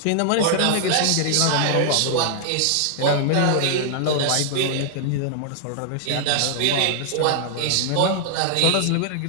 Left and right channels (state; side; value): different; both; correlation -0.01